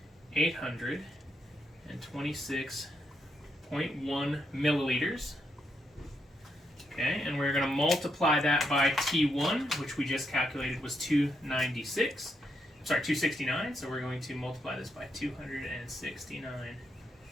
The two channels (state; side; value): normal; both; correlation 0.79